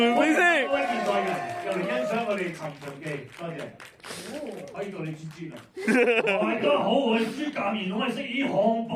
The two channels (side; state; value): both; identical; correlation 1.00